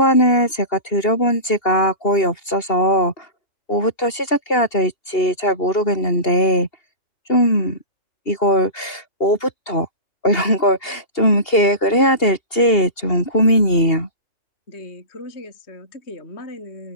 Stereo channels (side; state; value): right; late; 2.8 ms